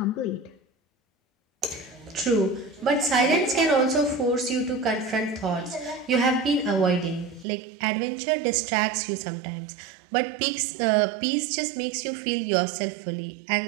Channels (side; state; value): left; drops out; at 7.5 s